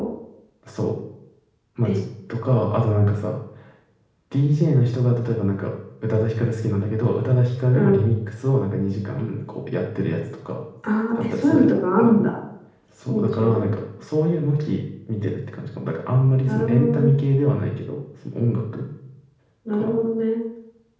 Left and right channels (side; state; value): both; identical; correlation 1.00